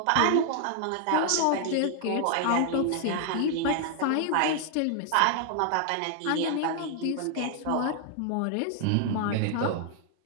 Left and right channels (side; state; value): both; different; correlation 0.00